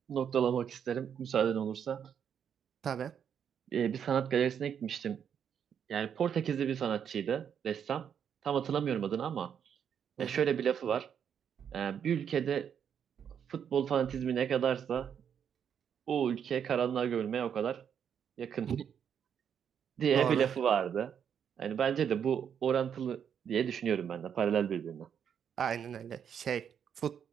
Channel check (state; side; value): quieter; left; 8.1 dB